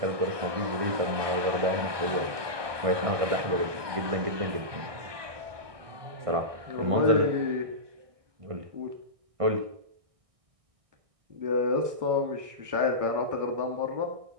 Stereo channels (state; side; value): late; left; 1.2 ms